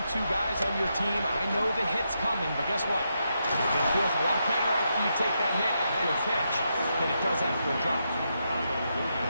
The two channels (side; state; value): both; inverted; correlation -0.83